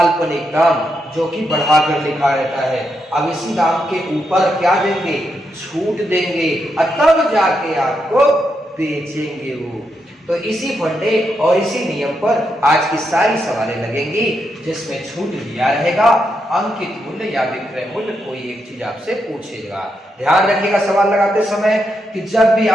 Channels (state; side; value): normal; both; correlation 0.82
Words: दाम, जो कि बढ़ाकर लिखा रहता है। अब इसी दाम के ऊपर क्या देंगे? छूट देंगे, तब जाके आपको बेचेंगे वो। तो इसी फंडे और इसी नियम पर आज की सारी सवालें लगेंगी, जिसमें छूट दिया रहेगा, अंकित मूल्य या विक्रय मूल्य, कोई एक चीज आपसे पूछेगा। ध्यान रखिएगा सवाल लगाते समय कि जब भी